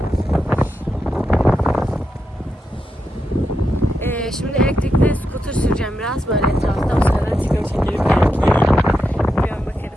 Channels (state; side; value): normal; both; correlation 0.86